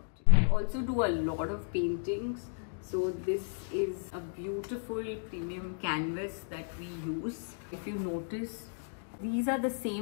it. We also do a lot of paintings. So this is a beautiful premium canvas that we use. If you notice, these are the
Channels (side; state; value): right; silent; digital silence